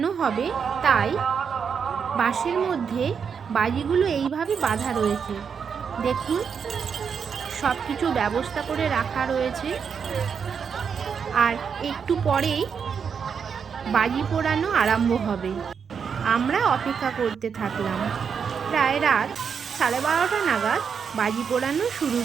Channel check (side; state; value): left; quieter; 6.6 dB